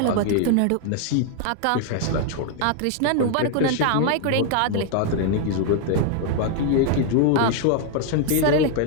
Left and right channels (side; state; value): both; different; correlation 0.00